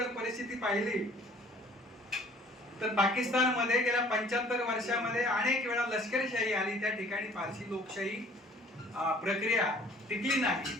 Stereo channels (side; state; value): both; normal; correlation 0.54